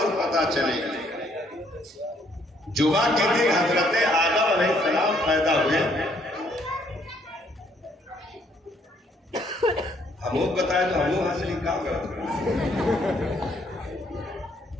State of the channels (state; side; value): normal; both; correlation 0.68